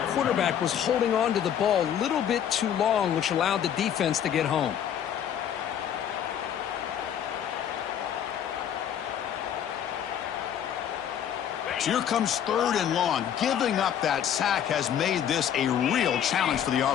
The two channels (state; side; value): quieter; right; 9.4 dB